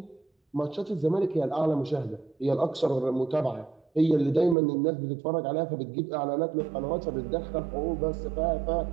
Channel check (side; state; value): left; drops out; at 4.5 s